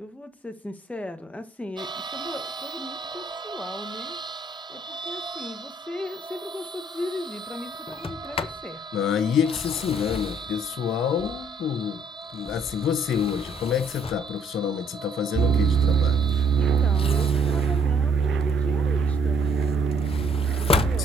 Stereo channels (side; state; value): both; normal; correlation 0.64